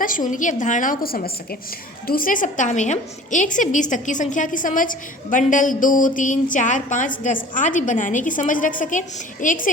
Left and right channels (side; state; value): both; normal; correlation 0.44